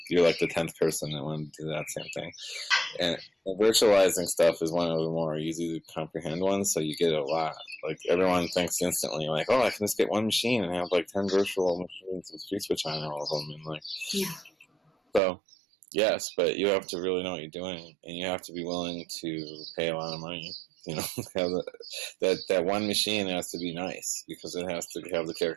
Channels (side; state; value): left; drops out; at 15.2 s